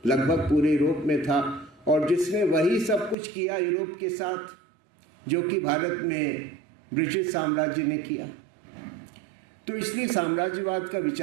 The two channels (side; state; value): left; drops out; at 3.2 s